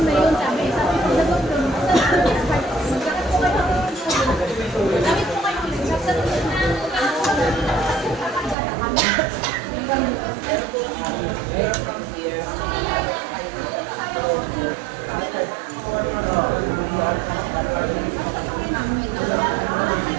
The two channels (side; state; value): left; drops out; at 8.6 s